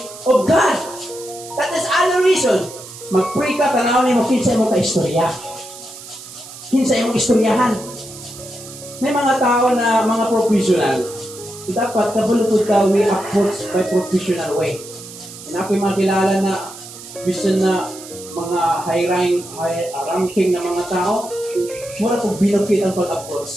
of God. That is adoration. Mag-pray ka, tanawin mo, kinsa mo ka-istorya. Kinsa mo istoryahan. May mga tao na mga professional. Dapat kabulutod ka, we approach by professional way. And ako yung mga kilala na vision na mga high ranking na mga tao, mura kong binukit ang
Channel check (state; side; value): noise; right; hiss, 15 dB below the sound